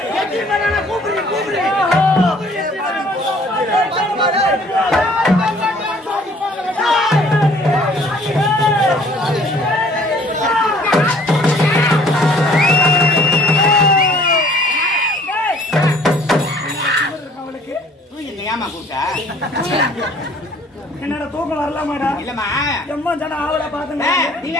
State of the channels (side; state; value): both; normal; correlation 0.56